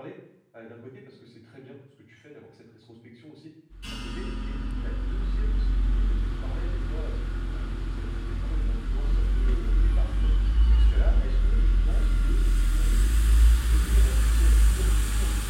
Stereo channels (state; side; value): identical; both; correlation 1.00